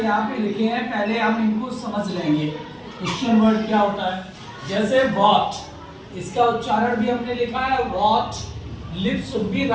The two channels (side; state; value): both; identical; correlation 1.00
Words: यहाँ पे लिखे हैं, पहले हम इनको समझ लेंगे क्वेश्चन वर्ड क्या होता है। जैसे व्हाट, इसका उच्चारण भी हमने लिखा है what, lips should be